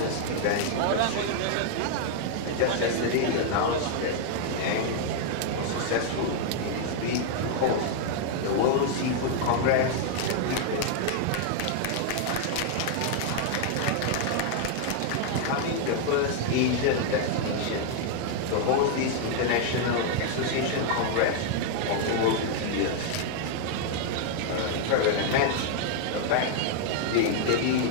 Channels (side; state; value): both; different; correlation 0.00